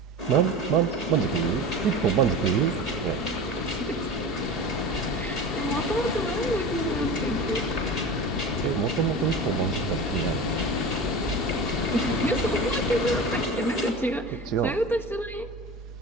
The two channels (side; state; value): both; normal; correlation 0.31